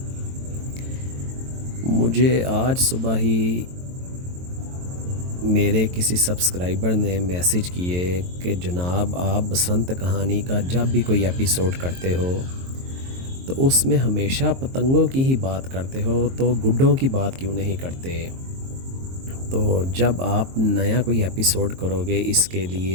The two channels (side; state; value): left; late; 23 ms